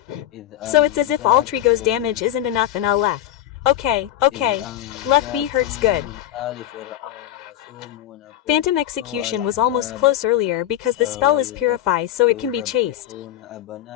So it's as if Alter Ego's damage isn't enough and I'll left. Okay. Left B hurts good. Phantom execution was almost close earlier because the spell is purify, so it can be chased.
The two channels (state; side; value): quieter; right; 12.5 dB